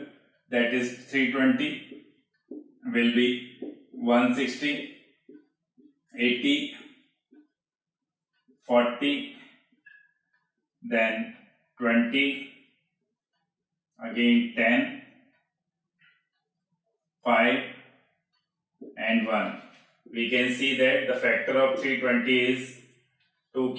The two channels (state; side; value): identical; both; correlation 1.00